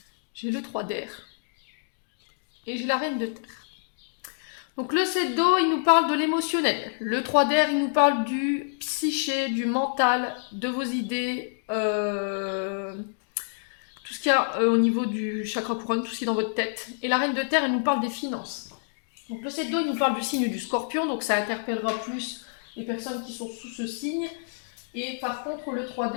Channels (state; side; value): silent; right; digital silence